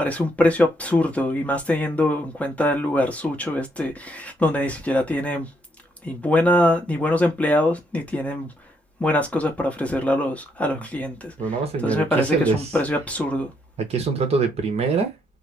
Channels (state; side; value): normal; both; correlation 0.74